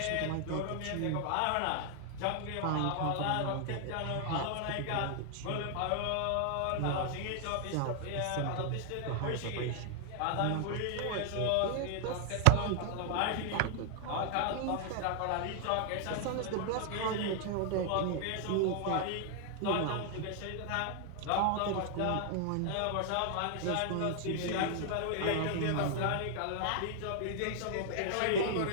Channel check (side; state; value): both; different; correlation 0.00